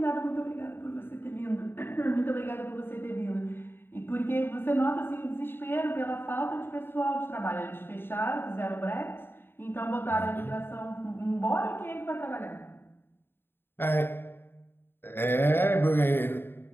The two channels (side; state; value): right; late; 0.11 ms